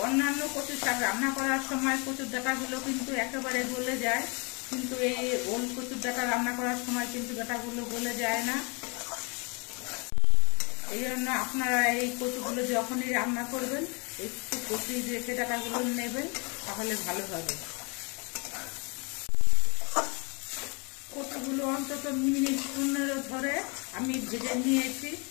অন্যান্য কচু শাক রান্না করার সময় কচুর ডাঁটাগুলো কিন্তু একেবারে গলে যায়, কিন্তু এই ওল কচুর ডাঁটা রান্না করার সময় কিন্তু ডাঁটাগুলো গলে যায় না। এই জন্য আপনারা এই কচুগুলো যখনই রান্না করবেন একটু কচি রেখে ডাঁটাগুলো নেবেন, তাহলে ভালো হবে। কচুগুলো অন্তত মিনিট 15 ধরে আমি ভেজে নিয়েছি।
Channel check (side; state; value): right; quieter; 31.9 dB